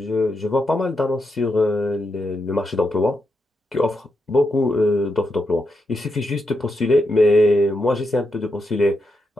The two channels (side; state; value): both; normal; correlation 0.84